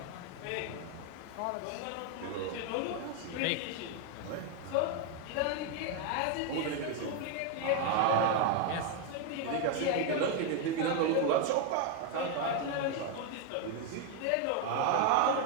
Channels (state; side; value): different; both; correlation 0.01